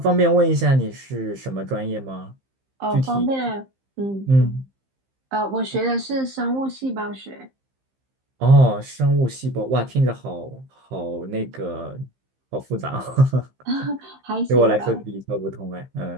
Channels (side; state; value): left; late; 15 ms